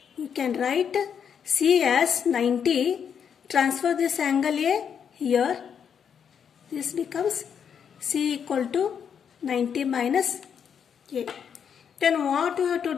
We can write C as 90. Transfer this angle A here. This becomes C equal to 90 minus A. Then what we have to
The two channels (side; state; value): right; quieter; 7.6 dB